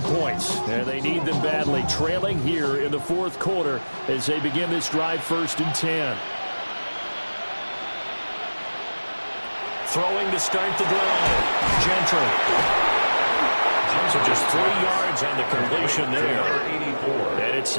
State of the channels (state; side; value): inverted; both; correlation -1.00